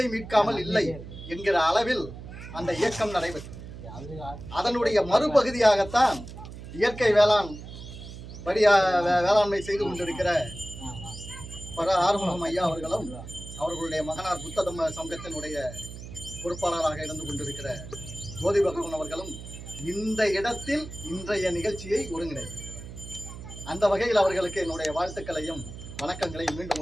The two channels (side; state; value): right; noise; hum, 12 dB below the sound